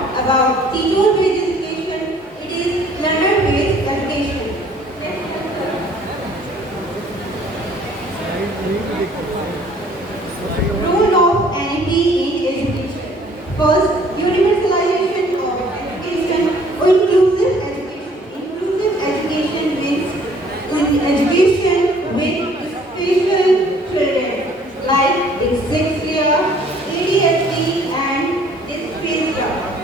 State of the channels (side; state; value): both; normal; correlation 0.57